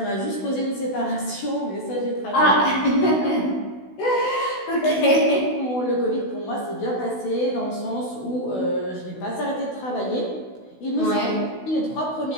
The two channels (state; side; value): late; right; 16 ms